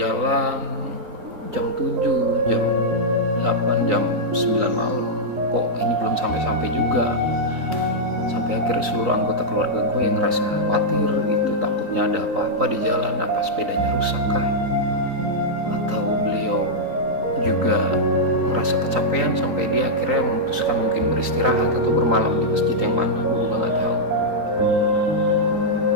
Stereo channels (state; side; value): late; left; 3.9 ms